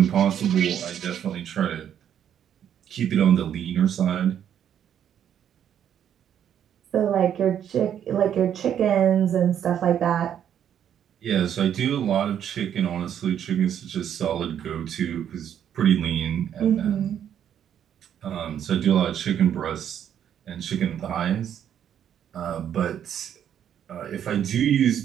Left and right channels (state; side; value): quieter; left; 9.5 dB